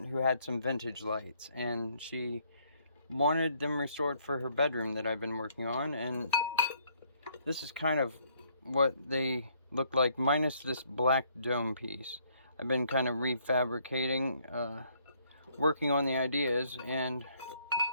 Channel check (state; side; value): inverted; both; correlation -0.68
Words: who had some vintage lights, and she wanted them restored for her bedroom that I've been working on, and this is kind of what they look like, minus this black dome piece. I've been kind of refabricating, working on the ideas, and